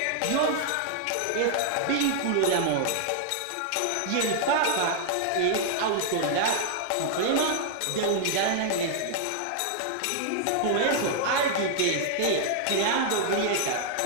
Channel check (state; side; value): different; both; correlation 0.00